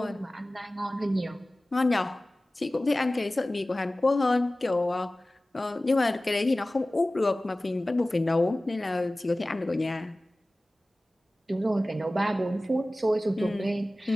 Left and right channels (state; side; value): normal; both; correlation 0.97